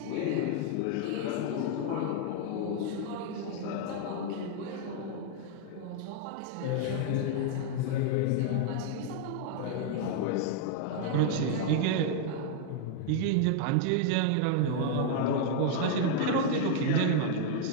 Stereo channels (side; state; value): both; different; correlation 0.00